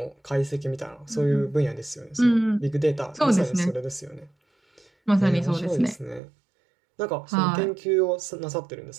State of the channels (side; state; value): left; drops out; at 6.2 s